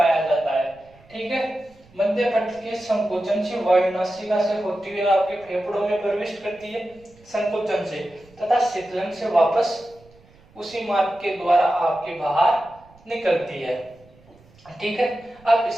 जाता है। ठीक है, मध्य पट के संकोचन से वायु नासिका से होती हुई आपके फेफड़ों में प्रवेश करती है संकोचन से, तथा शीतलन से वापस उसी मार्ग के द्वारा आपके बाहर निकलती है। ठीक है, अब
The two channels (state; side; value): noise; right; rumble, 27 dB below the sound